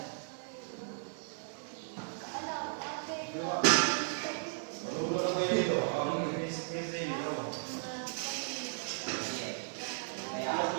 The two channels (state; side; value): silent; left; digital silence